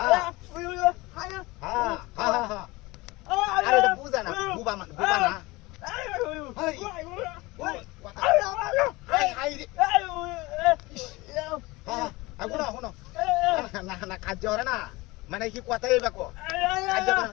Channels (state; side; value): quieter; right; 22.0 dB